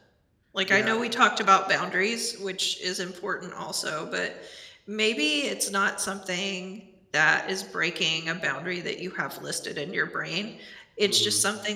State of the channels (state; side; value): identical; both; correlation 1.00